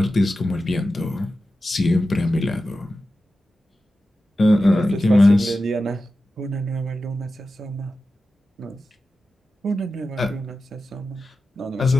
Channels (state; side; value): normal; both; correlation 0.92